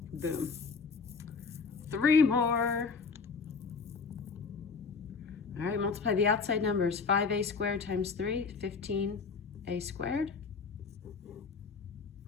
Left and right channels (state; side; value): quieter; right; 4.9 dB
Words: Boom. 3 more. All right, multiply the outside numbers. 5a squared times 3, 15a squared.